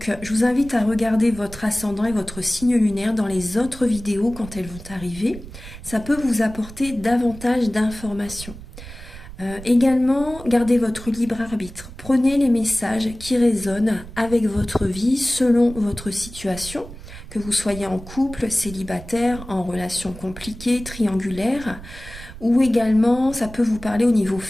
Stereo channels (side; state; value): right; noise; rumble, 15 dB below the sound